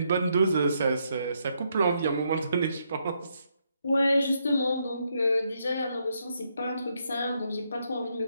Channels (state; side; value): inverted; both; correlation -0.77